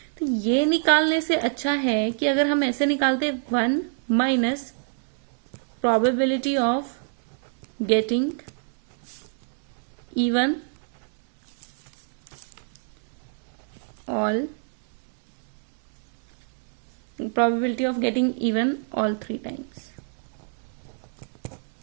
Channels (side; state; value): left; silent; 60 dB below the other